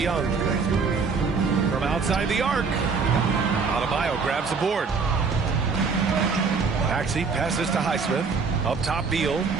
From outside the arc. Adebayo grabs the board. Maxey passes to Highsmith. Up top Beal.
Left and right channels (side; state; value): left; quieter; 5.0 dB